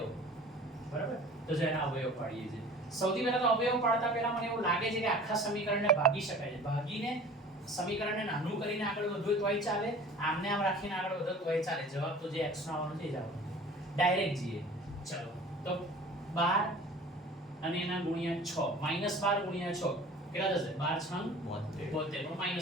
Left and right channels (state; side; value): normal; both; correlation 0.44